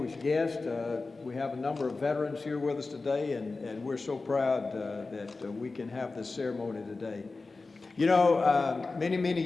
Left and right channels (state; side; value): quieter; right; 3.7 dB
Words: guests. We have a number of veterans here with us today, and we're so proud that we can have this ceremony today. You know, many